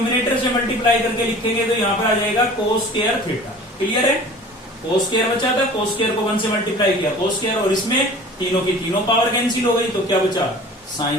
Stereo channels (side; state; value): both; normal; correlation 0.44